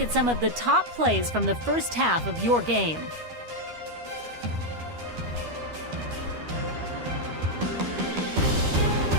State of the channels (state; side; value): late; left; 12 ms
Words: some of the top plays from the first half of your game.